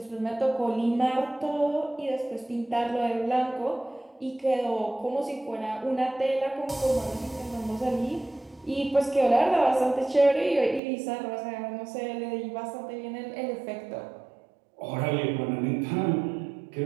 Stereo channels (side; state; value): left; drops out; at 10.8 s